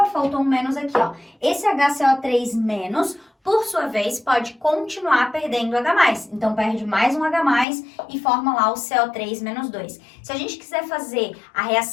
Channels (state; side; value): drops out; right; at 7.7 s